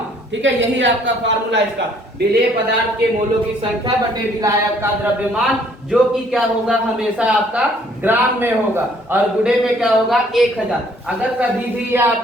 ठीक है, यही आपका फार्मूला इसका, विलेय पदार्थ के मोलों की संख्या बटे विलायक का द्रव्यमान, जो कि क्या होगा? हमेशा आपका ग्राम में होगा, और गुणे में क्या होगा? 1000। अगर कभी भी यह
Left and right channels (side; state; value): both; normal; correlation 0.62